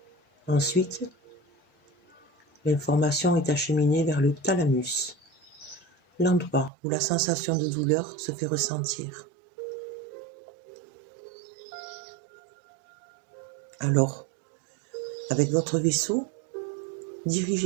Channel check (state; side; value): drops out; left; at 6.7 s